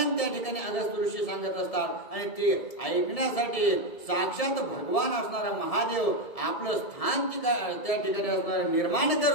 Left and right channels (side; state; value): right; late; 1.7 ms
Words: त्या ठिकाणी अगस्त्य ऋषी सांगत असतात। आणि ते ऐकण्यासाठी साक्षात भगवान असणारा महादेव आपलं स्थान त्या ठिकाणी असणार निर्माण